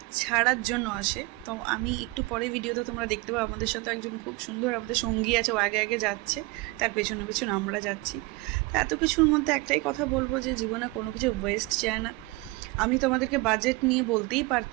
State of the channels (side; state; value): left; quieter; 22.8 dB